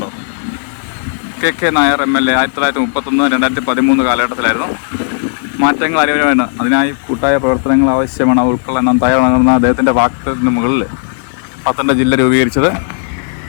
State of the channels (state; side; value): silent; right; digital silence